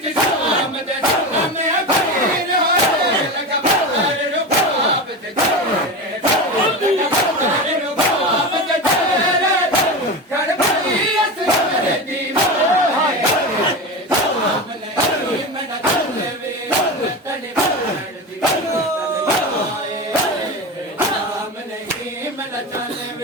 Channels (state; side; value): normal; both; correlation 0.23